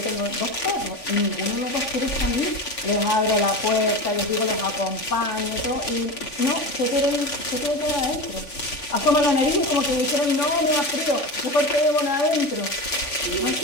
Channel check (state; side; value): late; right; 3.5 ms